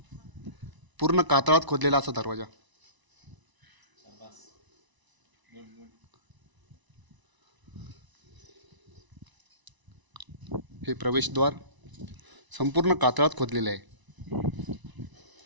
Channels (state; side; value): late; left; 1.0 ms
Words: पूर्ण कातळात खोदलेला असा दरवाजा. हे प्रवेशद्वार संपूर्ण कातळात खोदलेले आहे.